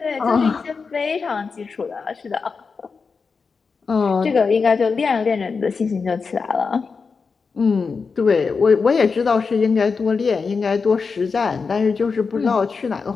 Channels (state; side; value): quieter; right; 5.0 dB